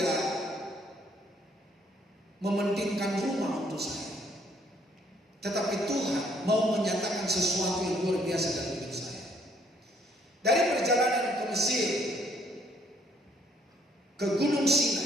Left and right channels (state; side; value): normal; both; correlation 0.65